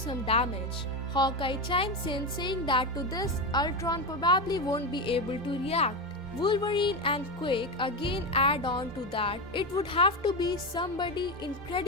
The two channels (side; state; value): both; normal; correlation 0.15